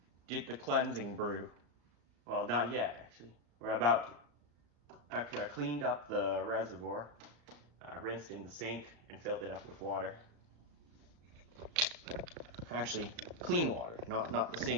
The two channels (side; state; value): left; late; 34 ms